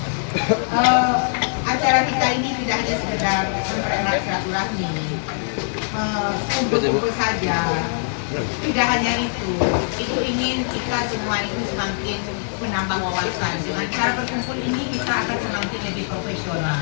Acara kita ini tidak hanya sekedar mempererat silaturahmi, kumpul-kumpul saja. Tidak hanya itu ingin kita semua itu semakin menambah wawasan. Dengan cara berkumpul ini kita akan semakin lebih profesional.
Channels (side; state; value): right; silent; digital silence